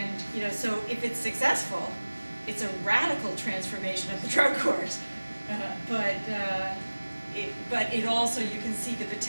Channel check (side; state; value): both; inverted; correlation -1.00